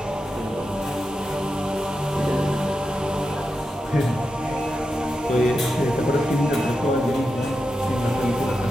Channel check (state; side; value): normal; both; correlation 0.89